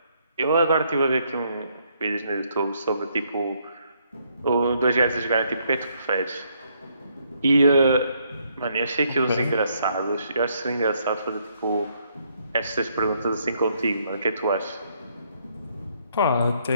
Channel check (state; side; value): inverted; both; correlation -0.71